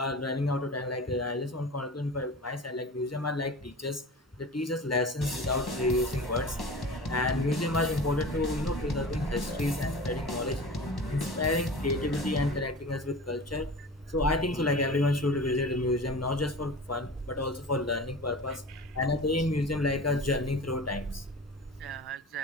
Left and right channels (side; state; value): both; normal; correlation 0.35